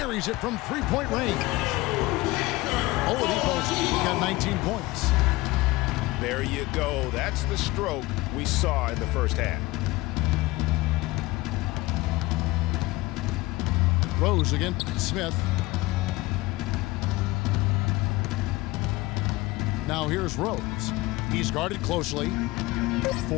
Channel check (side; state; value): right; quieter; 20.5 dB